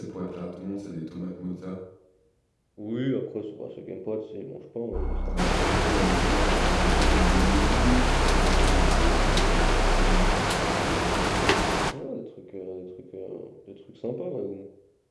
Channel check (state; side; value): identical; both; correlation 1.00